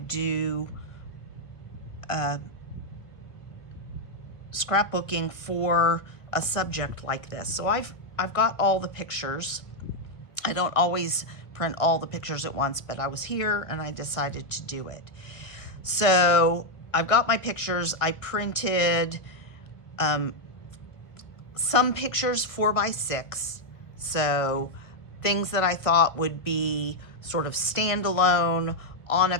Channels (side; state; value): right; late; 1.6 ms